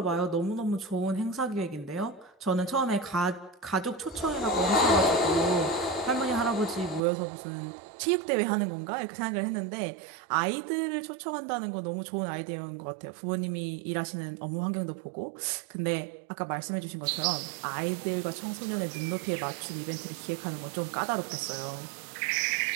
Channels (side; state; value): left; drops out; at 7.0 s